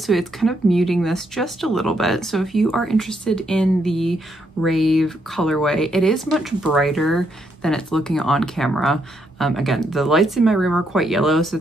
it's kind of muting this just a little bit. So if you are interested in the Rave colorway, it is much brighter than it's looking on camera. Again, the lights in my room are quite yellow, so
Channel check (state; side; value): normal; both; correlation 0.76